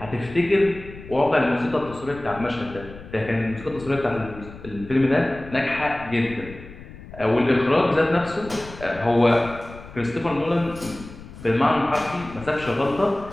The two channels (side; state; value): left; noise; rumble, 16 dB below the sound